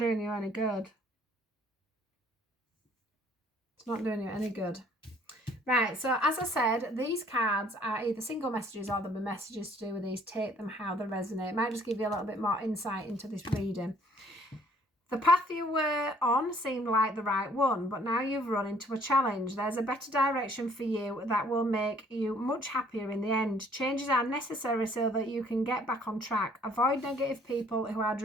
you any good. It's not doing you any good. Right, so as I said, these cards are either single messages or there'll be messages to do with these. Take them how they resonate. It might just give you a little bit more insight into this reading. The path you were on seemed like the right one, but now you've run into a challenge. There's a better direction for you that will make you much happier in the end. Changes are necessary so that you can get back on track. Avoid negative people who are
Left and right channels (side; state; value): both; normal; correlation 0.59